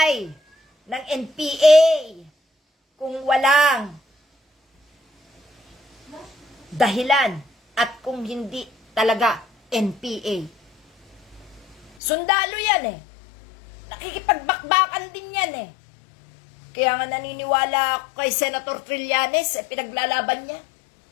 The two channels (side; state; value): right; drops out; at 11.9 s